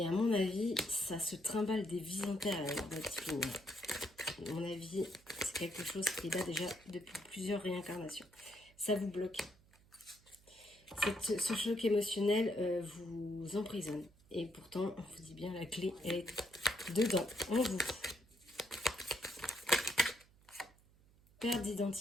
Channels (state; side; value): noise; right; hum, 28 dB below the sound